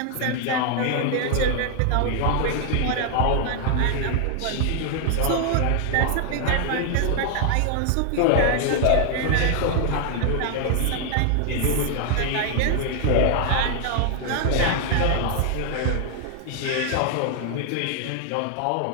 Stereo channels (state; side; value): different; both; correlation 0.00